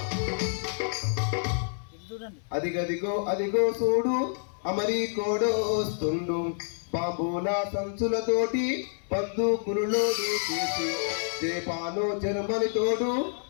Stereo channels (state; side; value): silent; right; 59 dB below the other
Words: అదిగదిగో అదిగో చూడు అమెరికోడో వస్తుండు, బాంబుల సంచులతోటి బంధుకులులోడు చేసి జేపాను జర్మని తోడు